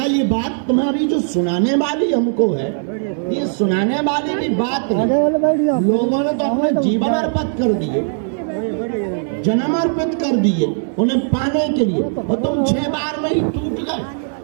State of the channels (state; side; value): silent; left; digital silence